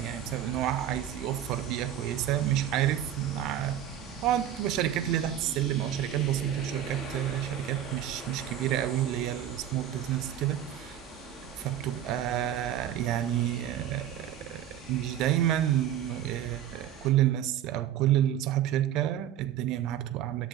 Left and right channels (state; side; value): quieter; left; 10.8 dB